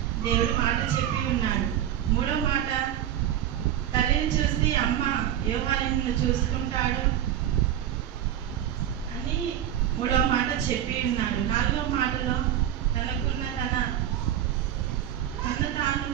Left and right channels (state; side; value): quieter; left; 10.9 dB